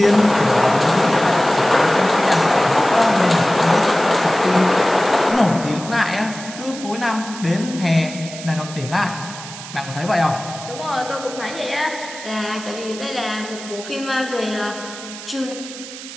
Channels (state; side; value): noise; right; hiss, 13 dB below the sound